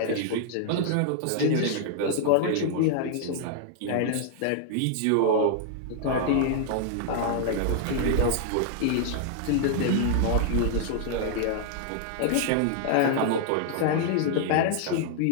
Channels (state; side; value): different; both; correlation 0.00